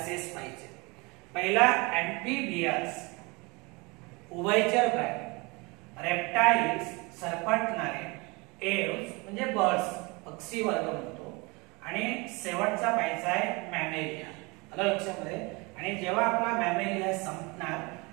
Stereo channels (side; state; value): left; quieter; 26.6 dB